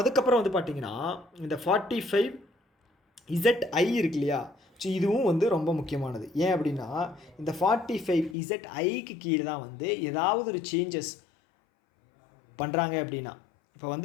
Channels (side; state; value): right; drops out; at 8.3 s